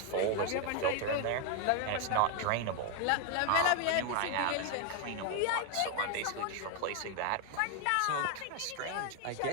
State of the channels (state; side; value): different; both; correlation 0.01